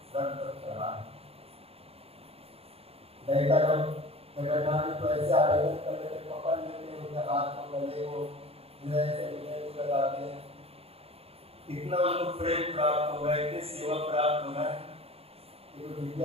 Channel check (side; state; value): left; late; 0.29 ms